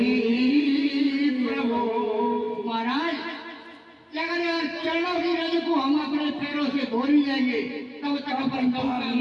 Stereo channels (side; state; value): both; identical; correlation 1.00